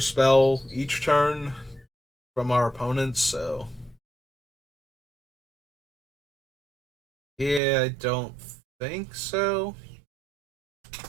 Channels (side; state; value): left; drops out; at 7.6 s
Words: spell each turn from our opponents, so... Yeah, I don't think so.